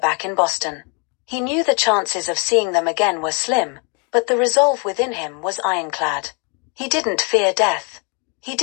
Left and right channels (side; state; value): right; quieter; 35.9 dB